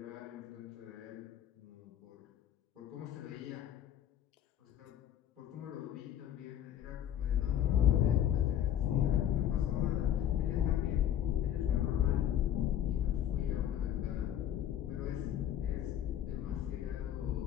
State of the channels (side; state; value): right; quieter; 10.6 dB